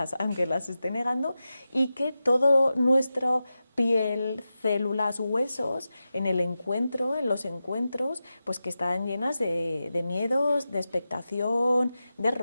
aunque las esté negando, y que todo nuestro piel, células, huesos, en el encuentro, en los encuentros, pues que están llenas de miedos, de expectación, de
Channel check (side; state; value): both; inverted; correlation -0.92